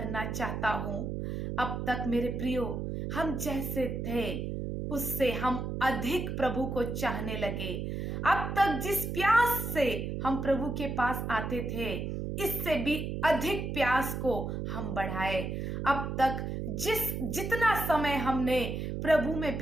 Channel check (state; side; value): noise; right; hum, 3 dB below the sound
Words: चाहता हूं। अब तक मेरे प्रियो, हम जैसे थे उससे हम अधिक प्रभु को चाहने लगे। अब तक जिस प्यास से हम प्रभु के पास आते थे, इससे भी अधिक प्यास को हम बढ़ाए। अब तक जितना समय हमने प्रभु में